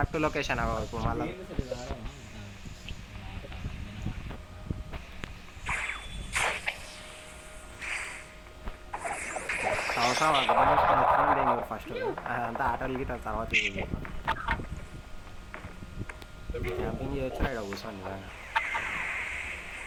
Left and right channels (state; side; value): identical; both; correlation 1.00